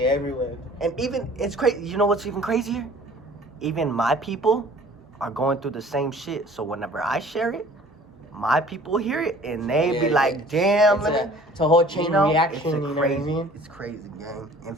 gang. everywhere. And even, it's crazy. You know what's even crazier? Even my people are going through the same shit. So whenever I share it, my people hear it, and they be Yeah, like, damn, it's a whole chain you know, reaction, it's a you know crazy, what I mean? It's crazy, gang. And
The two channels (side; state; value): both; normal; correlation 0.50